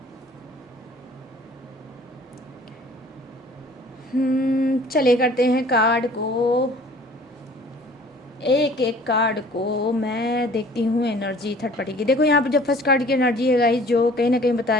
चलिए करते हैं कार्ड को, एक एक कार्ड को मैं देखती हूँ एनर्जी थर्ड पार्टी की। देखो यहाँ पर जो फर्स्ट कार्ड की एनर्जी है गाइस, जो कहीं ना कहीं बता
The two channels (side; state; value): both; normal; correlation 0.51